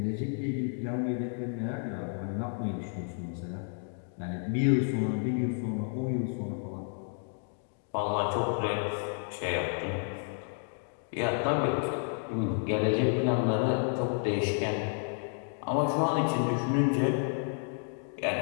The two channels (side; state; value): right; silent; 57 dB below the other